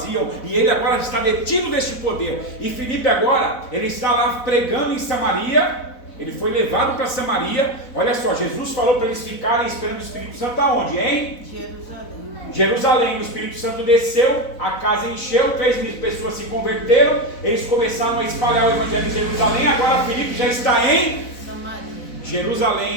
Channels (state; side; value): late; right; 4.0 ms